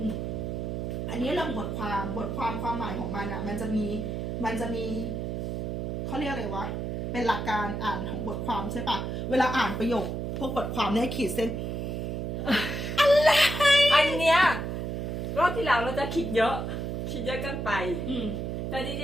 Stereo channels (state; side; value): noise; right; hum, 3 dB below the sound